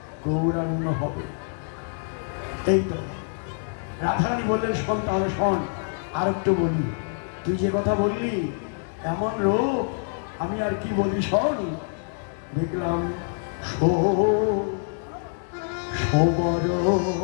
গৌরাঙ্গ হবে। এই তো রাধারানী বললেন শোন তাহলে শোন আর একটু বলি তুই যে কথা বললি এমন রূপ আমি আর কি বলি শোন দেখলাম সবর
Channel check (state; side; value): silent; right; 61 dB below the other